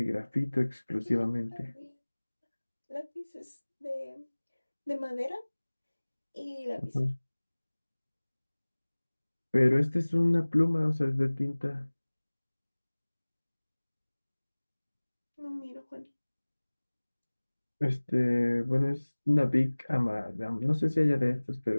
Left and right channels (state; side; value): inverted; both; correlation -1.00